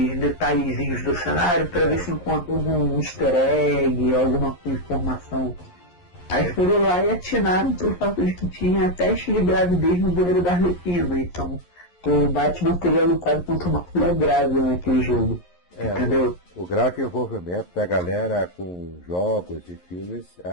detalhezinhos do cenário para ver se encontra algum easter egg, alguma informação. Aí foram lá e atinaram pelo fato de que tinha teste de gravidez no banheiro da Arlequina. Então o Batman teria lutado contra uma mulher grávida naquele jogo. Entendeu? O grau de envolvimento da galera com jogos e filmes,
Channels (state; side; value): late; right; 11 ms